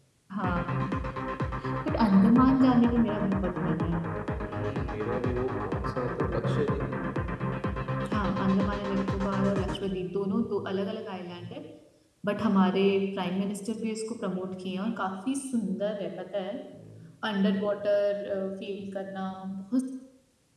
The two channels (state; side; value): identical; both; correlation 1.00